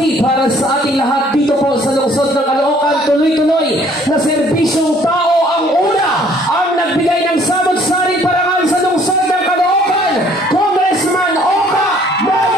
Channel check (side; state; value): both; normal; correlation 0.59